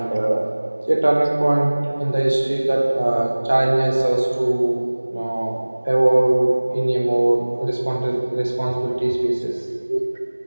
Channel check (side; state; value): both; inverted; correlation -1.00